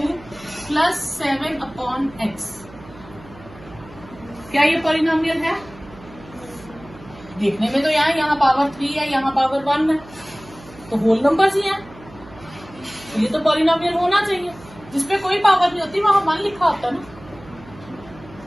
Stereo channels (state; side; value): noise; right; hum, 20 dB below the sound